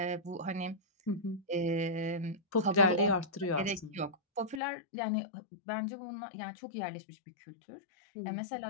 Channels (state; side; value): drops out; right; at 4.6 s